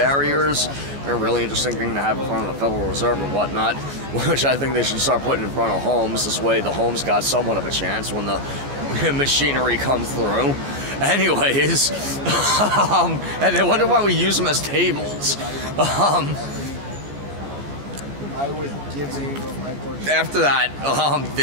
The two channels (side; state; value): left; late; 14 ms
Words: They're a really interesting thing to have in front of the Federal Reserve and whatnot, which I think they should start putting in front of homes. This way the homes got somewhat of a chance when the machinery comes through. Anyways, and they wonder why we use them as tables. After that,